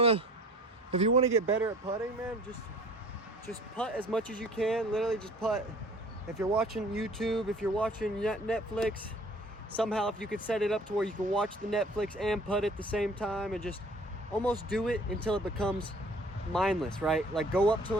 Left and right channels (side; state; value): both; normal; correlation 0.50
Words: to get better at putting, man, just putt as much as you can. Literally just putt. If you're watching YouTube, if you're watching Netflix, somehow if you could set it up to where you can watch the Netflix and putt at the same time, and just almost do it until it becomes mindless, right? Like go up to